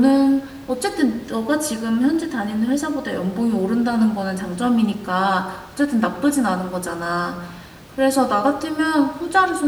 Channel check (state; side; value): identical; both; correlation 1.00